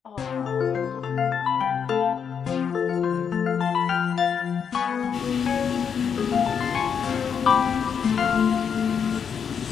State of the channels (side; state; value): right; quieter; 7.1 dB